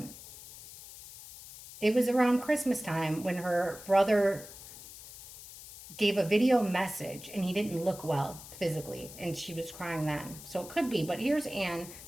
it was around Christmas time when her brother gave a video message and he didn't look well physically and she was crying then. So it could be, but here's Anne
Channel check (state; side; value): noise; left; hiss, 15 dB below the sound